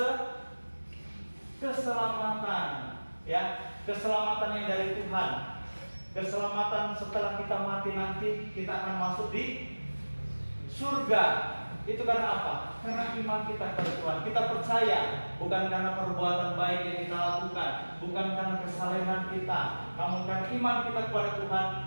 keselamatan, ya, keselamatan yang dari Tuhan. Keselamatan setelah kita mati nanti kita akan masuk di surga. Itu karena apa? Karena iman kita kepada Tuhan. Kita percaya bukan karena perbuatan baik yang kita lakukan, bukan karena kesalehan kita, namun karena iman kita kepada Tuhan,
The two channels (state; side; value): inverted; both; correlation -1.00